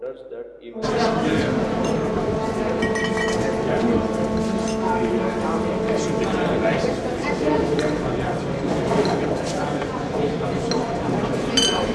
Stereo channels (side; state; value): both; identical; correlation 1.00